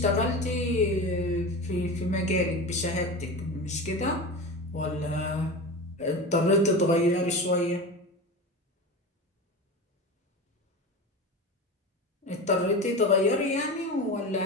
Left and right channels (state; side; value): normal; both; correlation 0.27